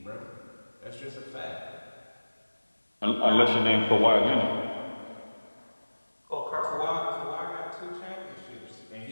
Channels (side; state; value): both; inverted; correlation -1.00